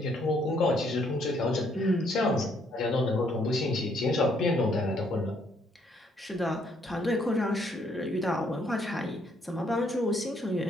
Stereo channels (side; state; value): both; normal; correlation 0.69